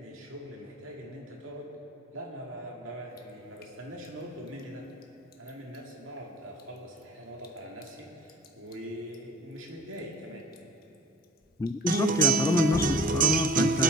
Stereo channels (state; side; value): normal; both; correlation 0.45